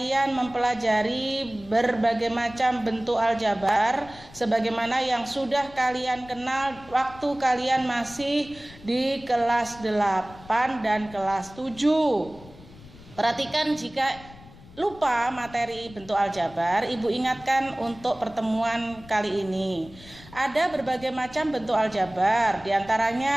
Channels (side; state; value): left; noise; rumble, 20 dB below the sound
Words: mempelajari berbagai macam bentuk aljabar sebagaimana yang sudah kalian kenal waktu kalian masih di kelas 8 dan kelas 7. Perhatikan, jika lupa materi bentuk aljabar, Ibu ingatkan untuk pertemuan kali ini. Ada berbagai macam bentuk aljabar,